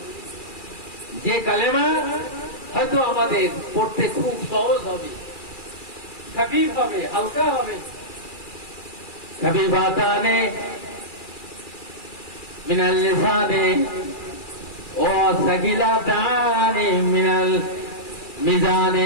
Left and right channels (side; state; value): right; late; 2.4 ms